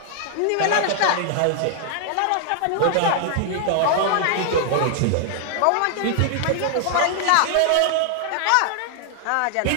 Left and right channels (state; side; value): different; both; correlation 0.00